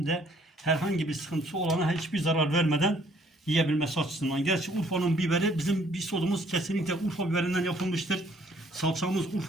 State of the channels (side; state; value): both; normal; correlation 0.62